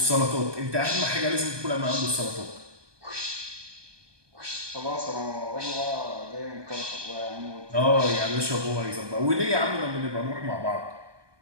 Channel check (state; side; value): late; left; 1.2 ms